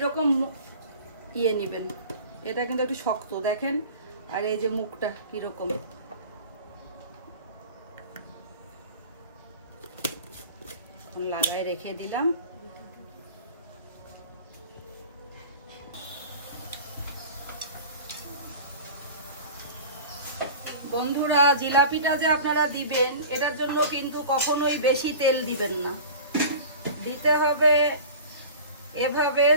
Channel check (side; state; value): both; inverted; correlation -0.38